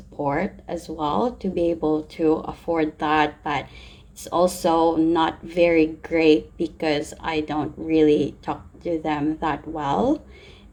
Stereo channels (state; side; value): identical; both; correlation 1.00